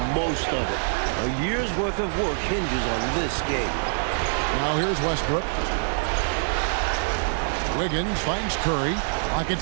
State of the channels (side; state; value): left; silent; 62 dB below the other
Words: most of it. A year's worth of work hinges on this game. Now here's Westbrook. Wiggins finds Curry. Pocket